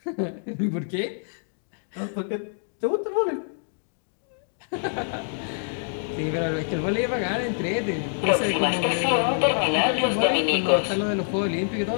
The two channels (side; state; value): right; silent; digital silence